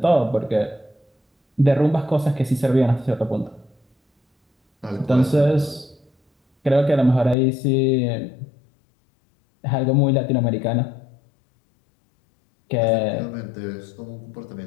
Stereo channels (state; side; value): drops out; right; at 7.4 s